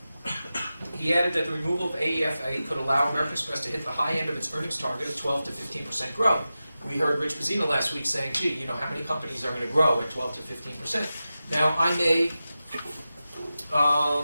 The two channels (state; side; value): inverted; both; correlation -0.93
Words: He added that the removal of AEFA could allow American Express to hit the high end of its earnings target of 12 to 15% growth. We heard Rich Bazzina last week saying, gee, how many companies are going to grow at 12 to 15%? Now, I may,